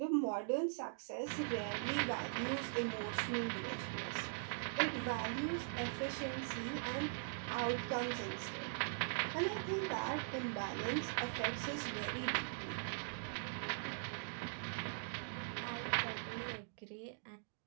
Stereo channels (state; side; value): silent; left; digital silence